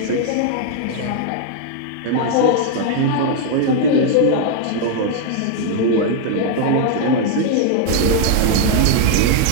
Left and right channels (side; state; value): both; different; correlation 0.00